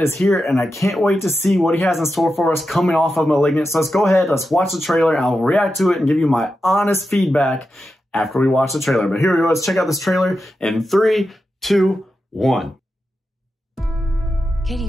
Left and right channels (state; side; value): normal; both; correlation 0.89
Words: here and I can't wait to see what he has in store for us coming off of Malignant. So let's go ahead, let's watch the trailer and I'll react to it and give you my honest feedback after we watch the trailer. But here we go, let's check out this trailer in 3, 2, 1. Katie,